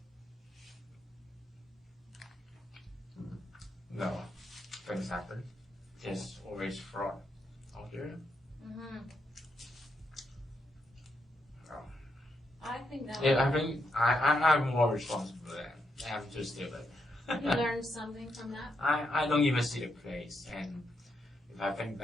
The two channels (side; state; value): both; normal; correlation 0.80